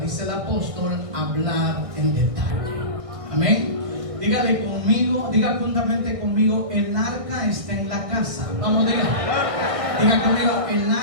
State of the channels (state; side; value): late; left; 1.6 ms